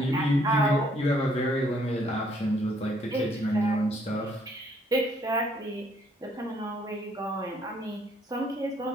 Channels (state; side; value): normal; both; correlation 0.66